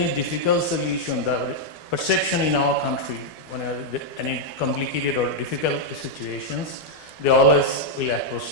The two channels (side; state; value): right; late; 12 ms